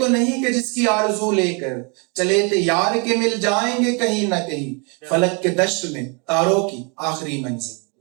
نہیں کہ جس کی آرزو لے کر چلے تھے یار کے مل جائیں گے کہیں نہ کہیں فلک کے دشت میں تاروں کی آخری منزل.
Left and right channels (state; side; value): quieter; left; 33.6 dB